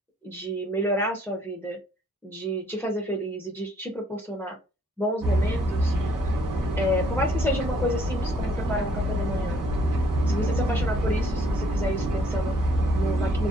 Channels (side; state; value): both; normal; correlation 0.64